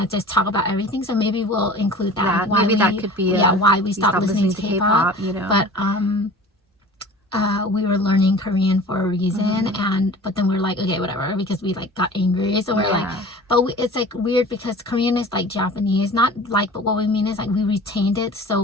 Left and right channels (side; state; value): both; normal; correlation 0.42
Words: just talk about everything. So maybe we'll include that. Maybe that could be why we stopped listening to K-pop. You know, but we were learning Korean for a reason, but then we're like, okay, whatever, because we like got angry. So we're like, it's like weird because Korean is like Japanese, not like, but what we mean is like we retained it so